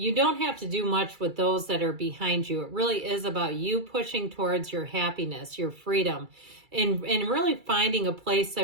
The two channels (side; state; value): left; late; 2.3 ms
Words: don't have to do much with those that are behind you. It really is about you pushing towards your happiness, your freedom, and really finding a place